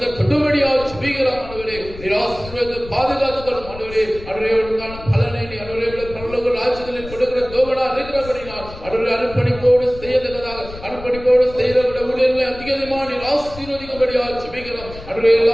தொடுபடியாக ஜெபிக்கலாம் ஆண்டவரே. நிராசிரியத்தை பாதுகாத்துக் கொள்ளும் ஆண்டவரே. அன்றைய பலனை நீ அன்றைய பரலோக ராஜ்யத்தில் கொடுக்கிற தோபனா இருக்கிறபடினால் அன்றைய அர்ப்பணிப்போடு செய்யத்தக்கதாக அர்ப்பணிப்போடு செய்யக்கூடிய ஊழியர்களை அதிகமாக நீர் ஆசீர்வதிக்கும்படியாக ஜெபிக்கிறோம். அன்றைய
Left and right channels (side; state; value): left; noise; rumble, 15 dB below the sound